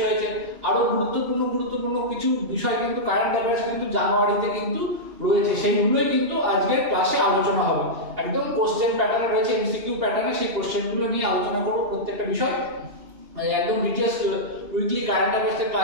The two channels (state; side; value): late; left; 2.8 ms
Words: হয়েছে, আরো গুরুত্বপূর্ণ কিছু বিষয় কিন্তু কারেন্ট অ্যাফেয়ার্স কিন্তু জানুয়ারিতে কিন্তু রয়েছে, সেইগুলোই কিন্তু আজকের ক্লাসে আলোচনা হবে। একদম কোশ্চেন প্যাটার্নে রয়েছে, এমসিকিউ প্যাটার্নে, সেই কোশ্চেনগুলো নিয়ে আলোচনা করবো প্রত্যেকটা বিষয়। একদম ডিটেইলস উইকলি কারেন্ট অ্যাফেয়ার্স এর